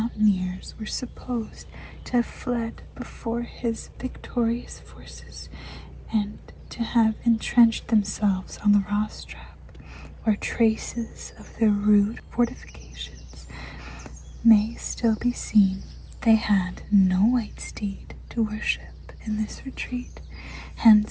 were supposed to have fled before his victorious forces and to have entrenched themselves on the Rostrap, where traces of their rude fortifications may still be seen. They had no white steed to worship in this retreat,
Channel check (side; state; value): both; identical; correlation 1.00